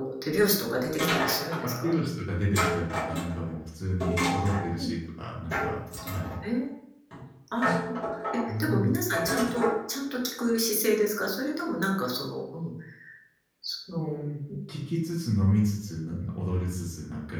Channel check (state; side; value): identical; both; correlation 1.00